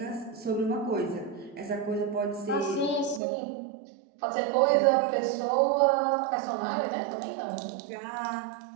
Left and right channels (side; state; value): left; drops out; at 3.2 s